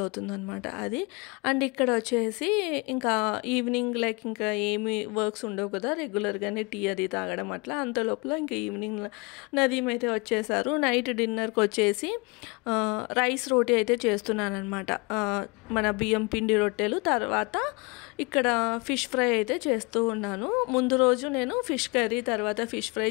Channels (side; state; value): right; quieter; 28.5 dB